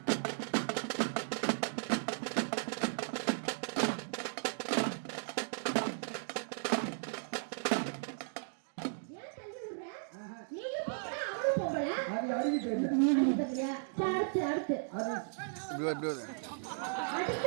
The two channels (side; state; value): left; silent; digital silence